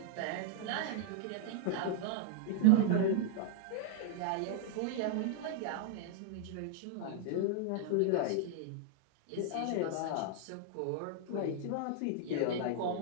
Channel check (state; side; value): different; both; correlation 0.00